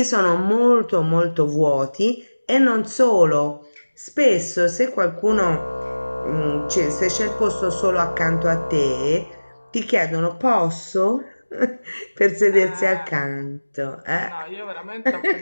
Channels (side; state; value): both; inverted; correlation -1.00